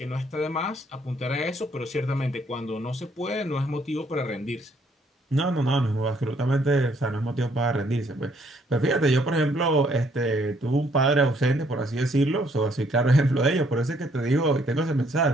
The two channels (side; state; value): both; normal; correlation 0.67